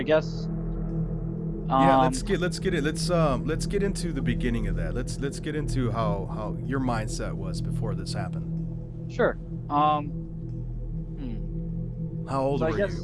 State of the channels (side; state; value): both; identical; correlation 1.00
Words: guess Yeah, let's get into the beginning of that. Let's get into how your mindset was before this happened. Sure. How old So I were guess- you?